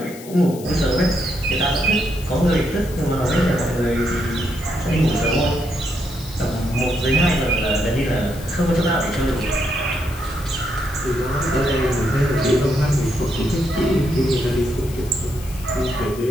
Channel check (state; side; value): noise; left; hiss, 17 dB below the sound